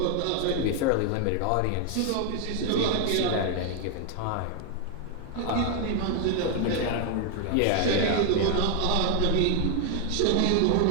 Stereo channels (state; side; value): different; both; correlation 0.01